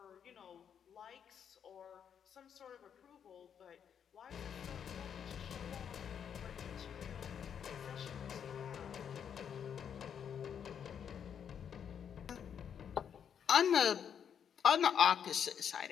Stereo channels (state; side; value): quieter; right; 8.1 dB